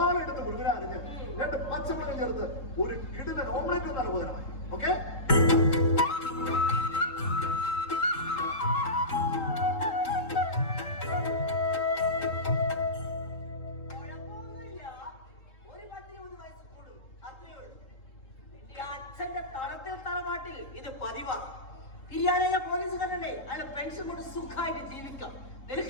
എടുത്ത് മുഴുവൻ അരിഞ്ഞ് 2 പച്ചമുളക് ചേർത്ത് ഒരു കിടിലൻ ഓംലെറ്റ് എന്നാണ് ഉപകരമായി. ഓക്കെ, അച്ഛന്റെ തളത്തിൽ തറവാട്ടിൽ ഇത് പതിവാ. പിരിയാനായ പോലീസുകാരനെ അയാൾ പെൻഷൻ കൊണ്ട് സുഖമായിട്ട് ജീവിക്കാം.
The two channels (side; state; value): right; late; 3.7 ms